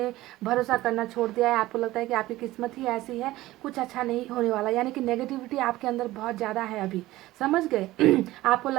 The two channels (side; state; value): left; quieter; 17.0 dB